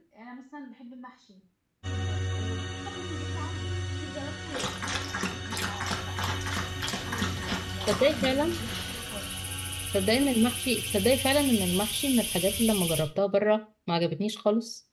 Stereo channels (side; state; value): both; identical; correlation 1.00